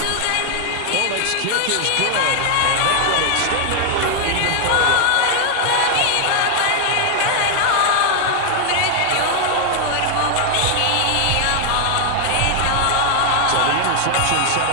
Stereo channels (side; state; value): both; different; correlation 0.00